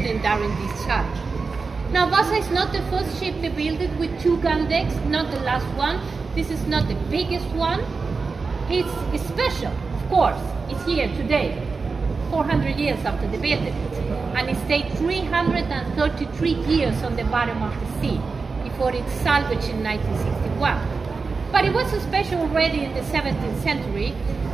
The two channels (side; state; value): left; quieter; 4.5 dB